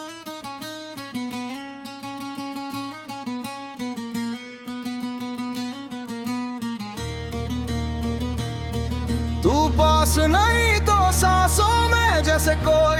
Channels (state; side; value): identical; both; correlation 1.00